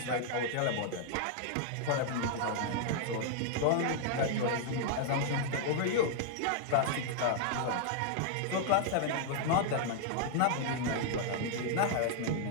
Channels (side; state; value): both; different; correlation -0.01